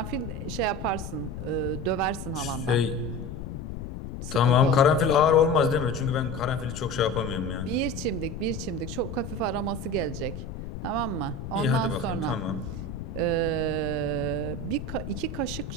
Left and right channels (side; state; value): left; noise; rumble, 8 dB below the sound